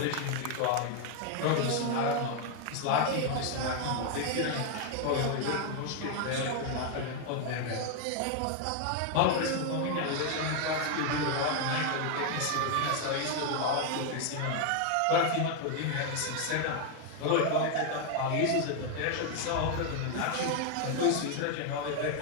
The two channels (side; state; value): both; different; correlation 0.00